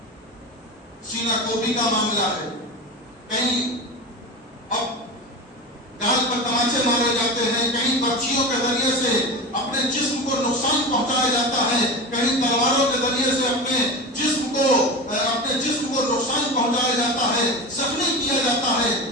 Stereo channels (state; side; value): normal; both; correlation 0.26